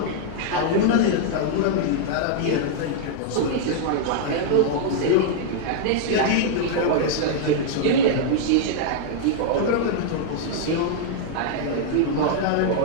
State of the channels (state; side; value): different; both; correlation -0.01